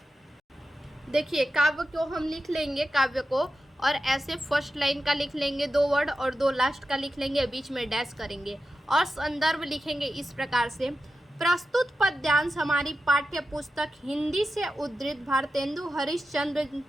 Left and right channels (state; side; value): normal; both; correlation 0.92